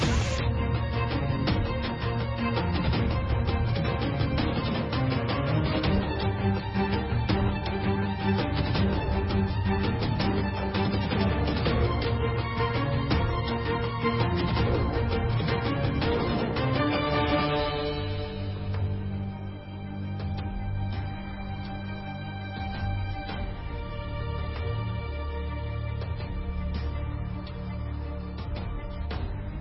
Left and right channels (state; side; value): identical; both; correlation 1.00